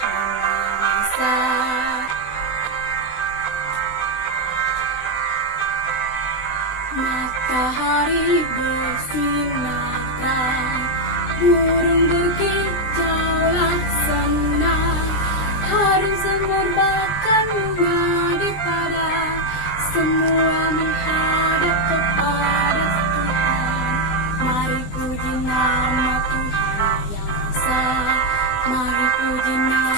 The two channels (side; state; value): right; late; 20 ms